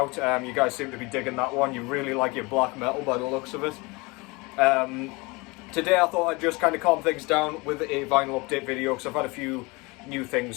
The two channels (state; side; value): quieter; right; 25.8 dB